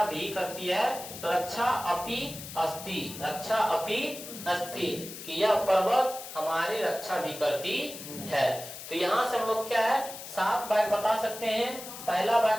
भी करती है, तो रक्षा अपि अस्ति, रक्षा अपि अस्ति, कि यह पर्वत हमारी रक्षा भी करती है। तो यहाँ से हम लोग क्या है 7 वाक्य बता सकते हैं। पहला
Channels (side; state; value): left; noise; hiss, 11 dB below the sound